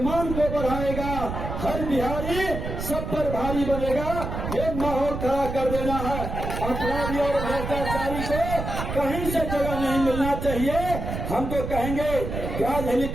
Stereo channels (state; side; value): noise; right; rumble, 5 dB below the sound